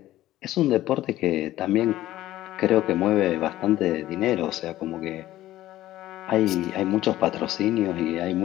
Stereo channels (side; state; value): right; quieter; 14.8 dB